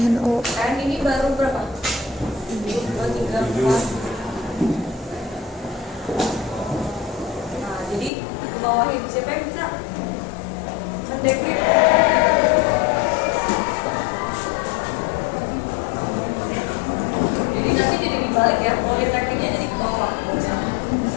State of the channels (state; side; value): drops out; right; at 8.1 s